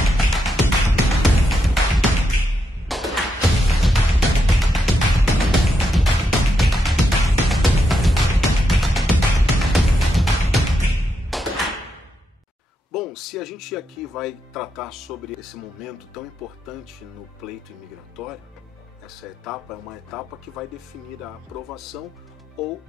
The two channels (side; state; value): both; normal; correlation 0.82